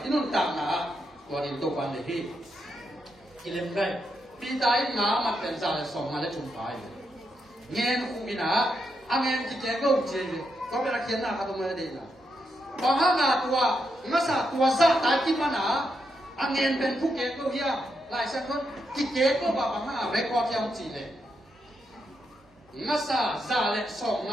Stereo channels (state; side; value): normal; both; correlation 0.82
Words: nón tạm nào, còn in tộc ban này thì cái lên đây, bây giờ ngã mặt bên trái là sòng mà lấy trúng phải, nghe nó không bị nào, anh em chỉ chơi câu chơi, có biết là khiến nào không mới đi nào, bằng hàng ngã tua, ngã sa tua sa tại kim mà nào, anh em bên phúc kế câu kia, lại xem con, chỉ kế câu bảo bằng hàng ngã record theo chỉ này. Ngasa zale song